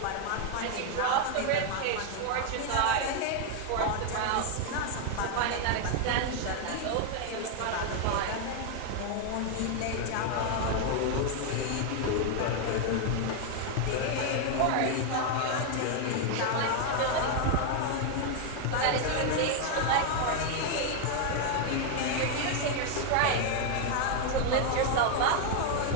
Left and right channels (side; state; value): both; different; correlation 0.00